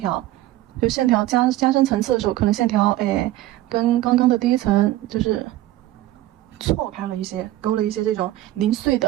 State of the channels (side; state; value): left; quieter; 15.4 dB